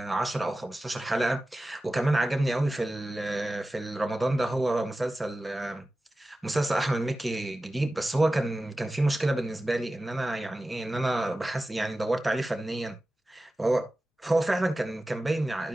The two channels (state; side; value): normal; both; correlation 0.95